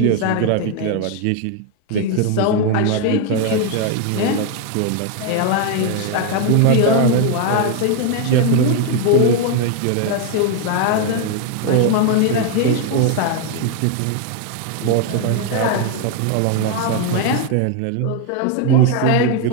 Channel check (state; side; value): different; both; correlation 0.01